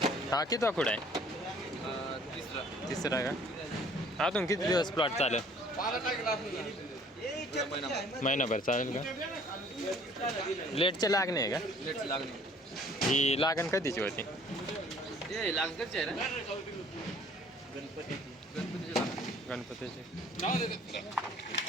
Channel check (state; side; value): normal; both; correlation 0.55